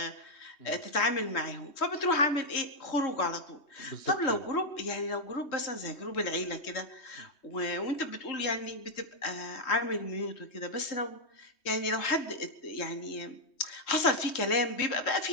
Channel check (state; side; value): late; right; 3.2 ms